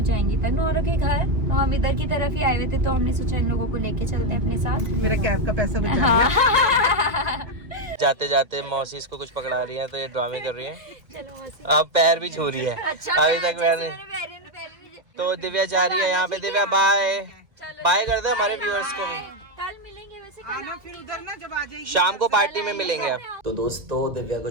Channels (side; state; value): left; late; 1.9 ms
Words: जाएंगी तन्नू और के घर। तो हम इधर की तरफ ही आए हुए थे, तो हमने सोचा इन लोगों को लेके चलते हैं अपने साथ। मेरा कैब का पैसा बचा हाँ। जाते जाते मौसी इसको कुछ पकड़ा रही है, तो ये ड्रामे कर रही है। चलो मौसी। अब पैर भी छू रही है। अच्छा, अभी तक मैंने तो दिव्या जा रही है यहाँ पे। दिव्या बाय बाय कर दो हमारे व्यूअर्स को भी। कल मिलेंगे वैसे। आना फिर उधर ना, जब आ जाएगी शाम को पार्टी में मिलेंगे अब। तो दोस्तों दिव्या को